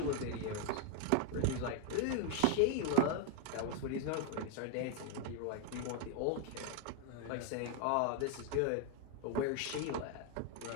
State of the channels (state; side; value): different; both; correlation 0.01